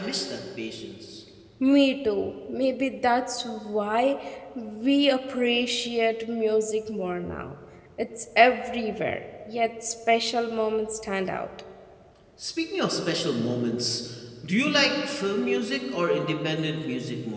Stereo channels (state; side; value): identical; both; correlation 1.00